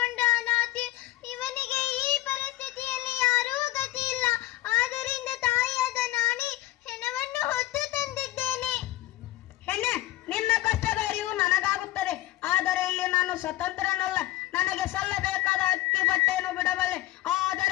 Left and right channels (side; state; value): right; quieter; 16.1 dB